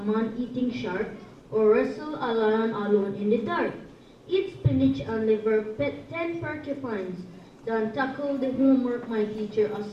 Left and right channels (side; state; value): both; identical; correlation 1.00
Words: eating shark or wrestle a lion alone in the dark. Eat spinach and liver, pet 10 porcupines, than tackle the homework my teacher